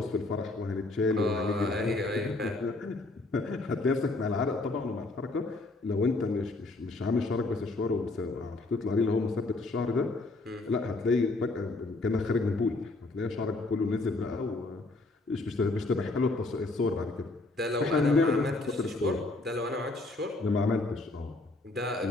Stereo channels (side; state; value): right; quieter; 3.1 dB